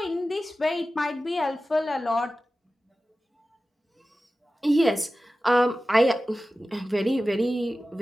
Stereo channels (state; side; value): normal; both; correlation 0.95